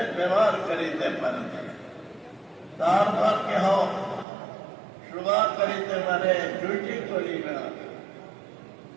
ব্যবহার করিতে পারবে। তারপর কেহ শুভা করিতে পারে দুইটি কলিমা,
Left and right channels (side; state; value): left; drops out; at 4.2 s